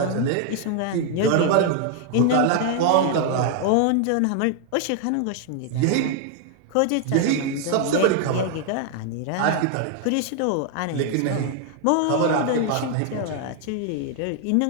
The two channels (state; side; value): different; both; correlation 0.00